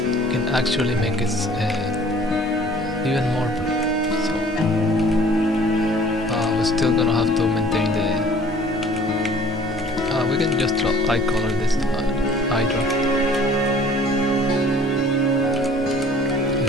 can actually make it even more blue. So we're still gonna have to maintain the we can just light color this eye drop, and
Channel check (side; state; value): both; normal; correlation 0.51